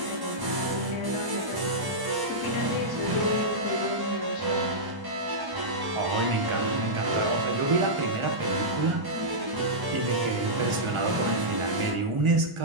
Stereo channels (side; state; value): left; late; 1.0 ms